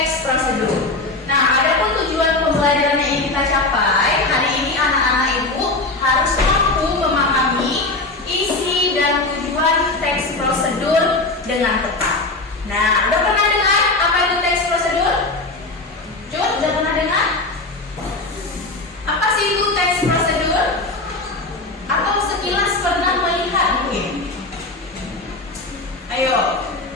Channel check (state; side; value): quieter; right; 3.1 dB